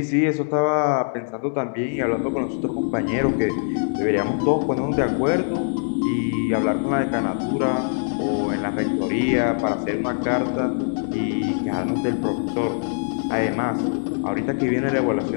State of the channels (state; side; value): silent; right; digital silence